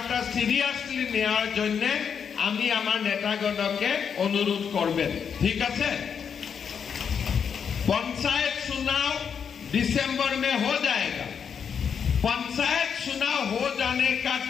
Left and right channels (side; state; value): right; quieter; 7.1 dB